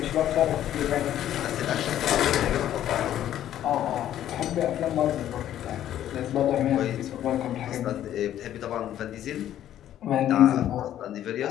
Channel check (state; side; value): quieter; right; 11.7 dB